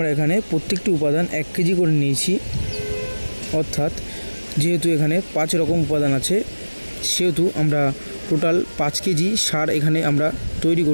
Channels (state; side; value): inverted; both; correlation -1.00